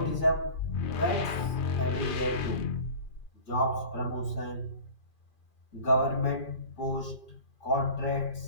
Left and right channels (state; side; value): late; right; 2.4 ms